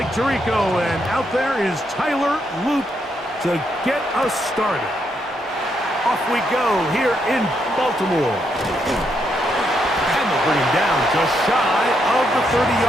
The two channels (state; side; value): normal; both; correlation 0.78